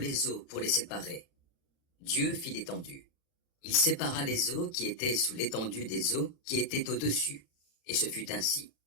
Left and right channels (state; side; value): late; right; 36 ms